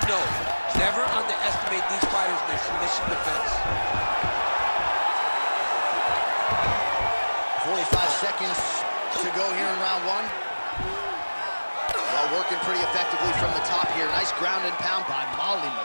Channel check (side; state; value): both; inverted; correlation -1.00